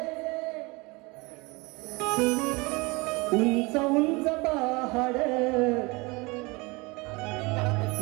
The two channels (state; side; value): quieter; left; 25.6 dB